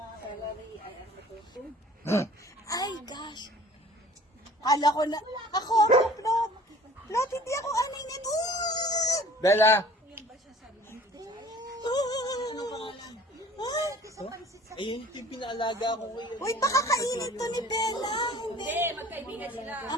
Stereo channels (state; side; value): normal; both; correlation 0.49